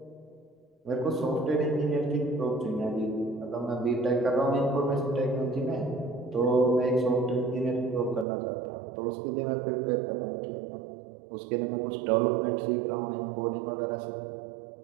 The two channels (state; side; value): drops out; left; at 8.2 s